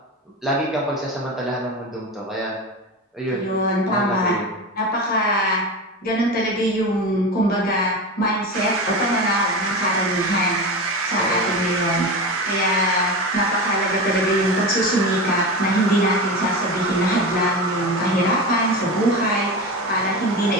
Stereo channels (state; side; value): normal; both; correlation 0.24